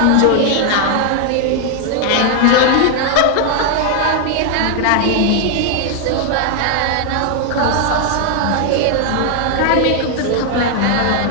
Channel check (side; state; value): both; different; correlation 0.00